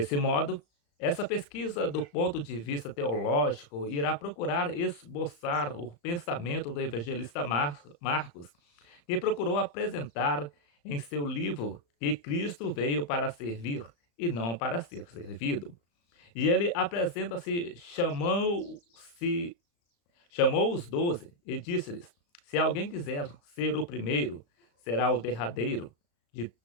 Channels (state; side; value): late; right; 35 ms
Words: modo, essa pesquisa do ponto de vista teológico irá procurar esboçar o pensamento do evangelista Marcos, que procurou apresentar em seu livro que Cristo veio para servir e não para ser servido. E ele apresenta-se, chamou os 12 e disse-lhes: se alguém quiser ser o primeiro, será o derradeiro de